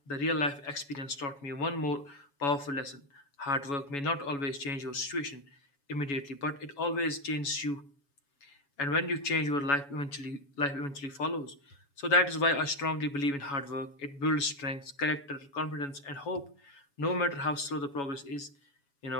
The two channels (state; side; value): late; right; 7.1 ms